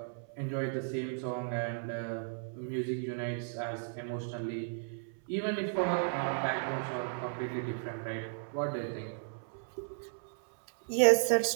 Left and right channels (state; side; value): silent; left; 55 dB below the other